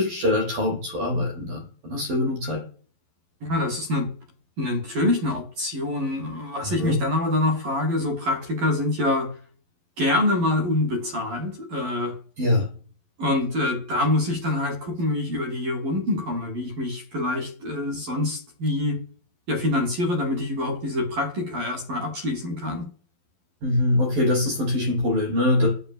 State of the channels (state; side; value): late; left; 11 ms